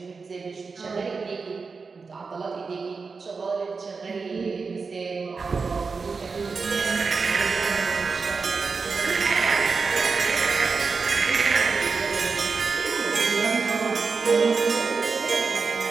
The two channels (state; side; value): quieter; left; 4.7 dB